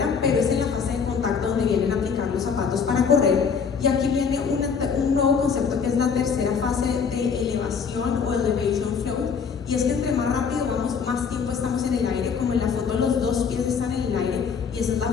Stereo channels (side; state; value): right; quieter; 6.2 dB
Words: pero es en la fase de contacto donde vienen a aplicar los zapatos para correr. Y aquí viene un nuevo concepto que es la tercera fase de elevación o elevation float. Y es que entre más rápido vamos, más tiempo estamos en el aire. Como en la foto los 2 pies están en el aire y esa es la